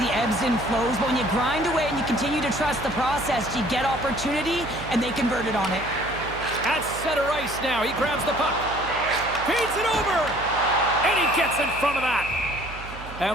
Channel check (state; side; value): noise; right; hum, 13 dB below the sound